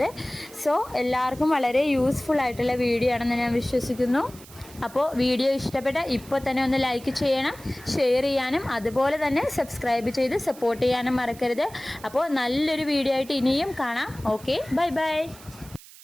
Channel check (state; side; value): noise; right; hiss, 20 dB below the sound